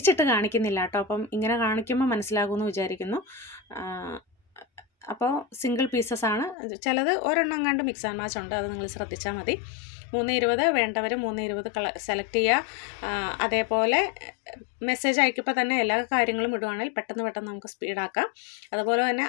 കാണിക്കുന്നില്ല കേട്ടോ. അപ്പം ഇങ്ങനെ കാണിക്കുമ്പോൾ മനസ്സിലാകുമെന്ന് വിചാരിക്കുന്നു. അപ്പോൾ സിംഗിൾ പീസസ് ആണ്. ചിലത് ഒരെണ്ണം കണ്ട് മിക്സ് ആൻഡ് മാച്ച് ഉണ്ട്, അത് നിങ്ങൾ ശ്രദ്ധിച്ചാൽ മതി. 320 വേണ്ടവർ 320 സെലക്ട് ചെയ്യുക. അതേപോലെ മെസ്സേജ് അയക്കുമ്പോൾ തന്നെ എല്ലാ കാര്യങ്ങളും ഇടുവാണെങ്കിൽ പെട്ടെന്ന് നമുക്ക് സ്പീഡാക്കാം. അതുപോലെ തന്നെ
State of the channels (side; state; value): right; drops out; at 6.6 s